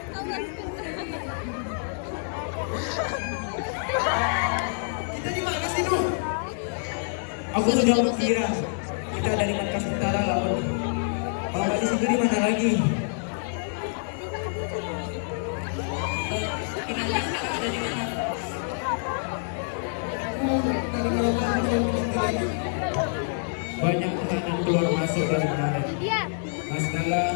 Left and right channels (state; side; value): silent; right; digital silence